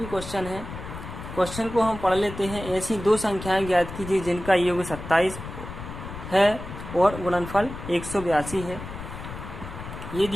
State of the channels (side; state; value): left; noise; rumble, 10 dB below the sound